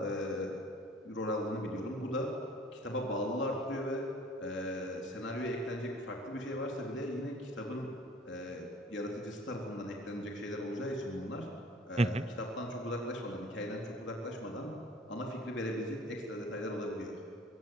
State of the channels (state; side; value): normal; both; correlation 0.50